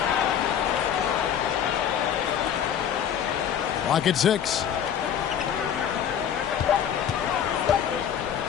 Clock at 6.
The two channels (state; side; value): quieter; right; 9.0 dB